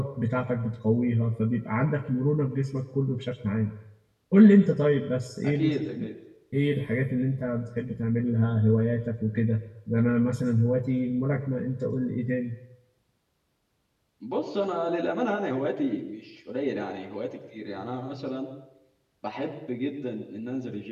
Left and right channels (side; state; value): both; identical; correlation 1.00